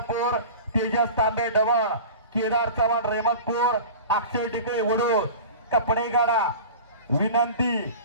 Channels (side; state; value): both; inverted; correlation -0.36